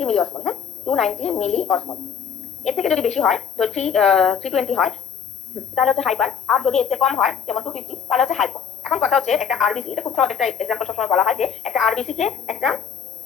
মিলি অসমোল, হ্যাঁ 290 মিলি অসমোল। এর থেকে যদি বেশি হয় তো 320 হয়, তাহলে হচ্ছে হাইপার। আর যদি এর থেকে কম হয় যেমন 250, তাহলে হচ্ছে হাইপো। এখন কথা হচ্ছে একটা আরবিসি, এটা খুব সহজ একটা এক্সাম্পল সবসময় বলা হয় যে একটা আরবিসি কে একটা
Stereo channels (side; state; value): right; quieter; 7.8 dB